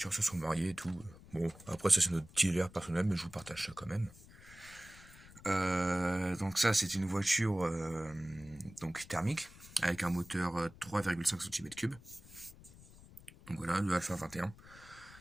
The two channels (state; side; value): noise; left; rumble, 20 dB below the sound